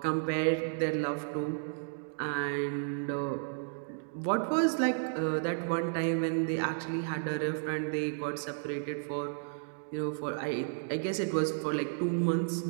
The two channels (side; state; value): left; silent; digital silence